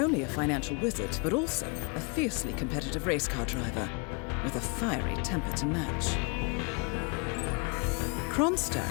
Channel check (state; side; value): quieter; right; 33.0 dB